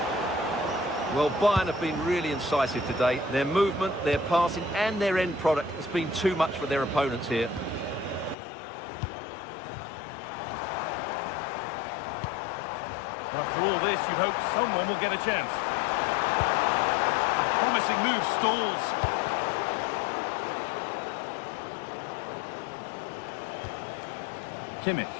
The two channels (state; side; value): drops out; right; at 8.3 s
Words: Well, Bayern have been really incisive today. Their movement, their passing and their end product has been too much for their opponents here. After all this, you'd hope someone will get a chance. A promising move stalls. Kimmich.